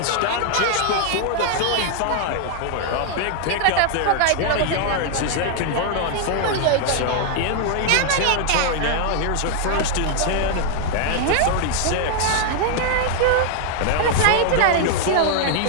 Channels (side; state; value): both; different; correlation 0.00